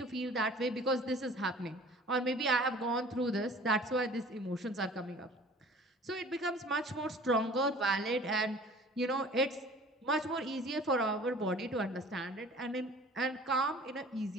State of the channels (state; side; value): normal; both; correlation 0.47